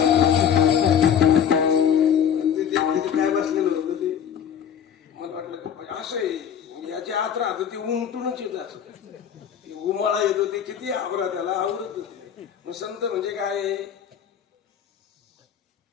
काय बसलेलं होतं ते. मला वाटलं असं आहे, याची आत राहत ते उमटूनच येत असं, उमाळा येतो ते किती आवरा त्याला आवडत नाही. मग संत म्हणजे काय?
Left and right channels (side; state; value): right; quieter; 8.5 dB